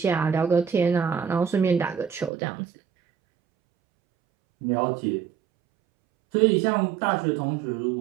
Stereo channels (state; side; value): drops out; left; at 2.3 s